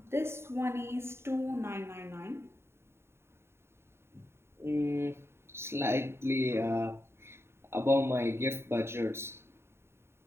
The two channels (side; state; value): left; late; 0.12 ms